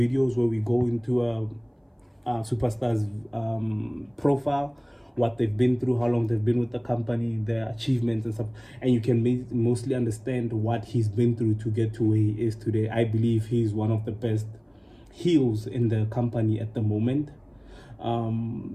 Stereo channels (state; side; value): identical; both; correlation 1.00